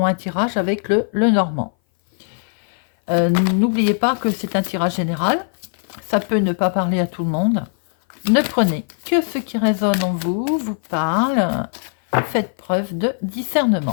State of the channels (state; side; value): silent; right; 59 dB below the other